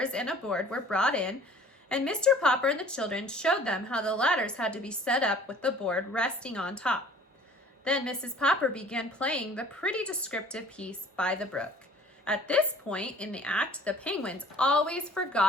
and a board were brought in, and Mr. Popper and the children showed them how the ladders had to be set up with the board resting on top. Then Mrs. Popper began playing the pretty descriptive piece, "By the Brook." At this point in the act, the penguins always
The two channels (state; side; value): normal; both; correlation 0.50